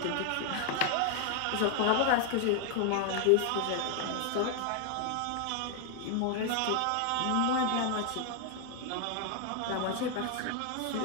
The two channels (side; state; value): both; different; correlation 0.00